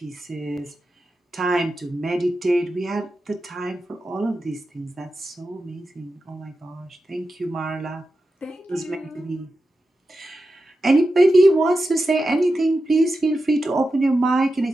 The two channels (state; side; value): normal; both; correlation 0.91